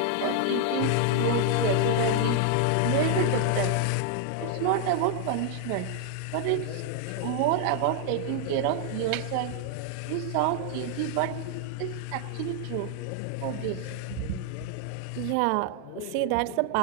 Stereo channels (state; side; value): different; both; correlation 0.00